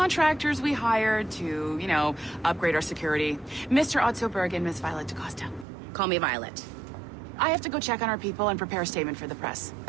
we hired to, you know, upgrade our security. Mr. Ottoberg and Miss Violet DaCosta. Call me Violet. I have to go check on our people and prepare a statement for the press.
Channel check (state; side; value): drops out; left; at 5.7 s